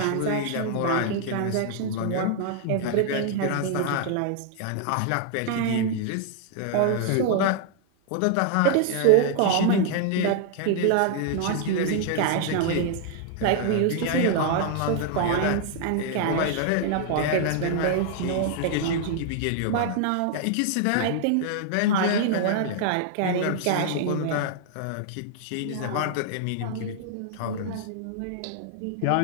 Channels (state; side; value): different; both; correlation 0.00